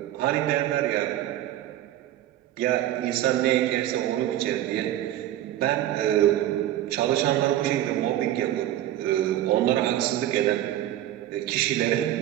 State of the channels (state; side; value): quieter; left; 13.1 dB